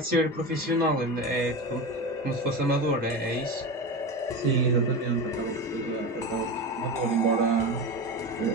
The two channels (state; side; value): normal; both; correlation 0.24